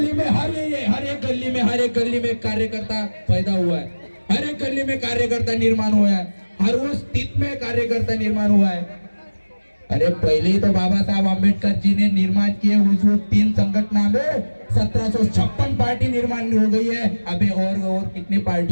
में हर एक गली में कार्यकर्ता पैदा हुआ है, हर एक गली में कार्यकर्ता निर्माण हुआ है, हर वो स्थिति में कार्यकर्ता निर्माण हुआ है। अरे पहले ही तो बाबा साहब अम्बेडकर जी ने निर्माण किए उस 3 संगठन में 1756 पार्टी निर्माण हो गई है। अबे और कितनी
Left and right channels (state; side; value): inverted; both; correlation -1.00